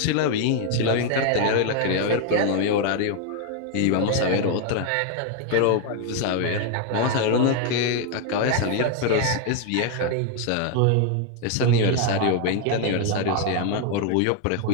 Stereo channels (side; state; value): both; different; correlation 0.01